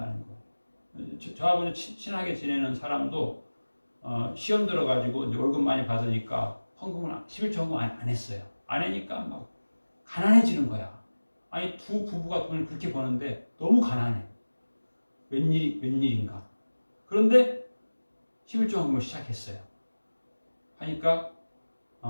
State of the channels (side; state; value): both; inverted; correlation -1.00